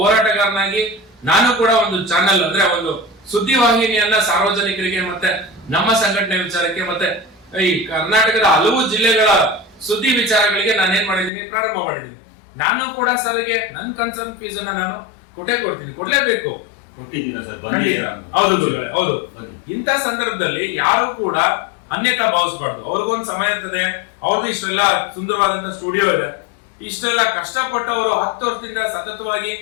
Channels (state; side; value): drops out; right; at 11.3 s